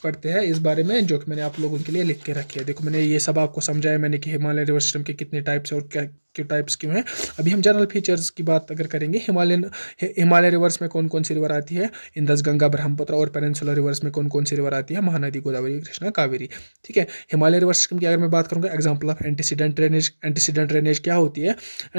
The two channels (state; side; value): inverted; both; correlation -1.00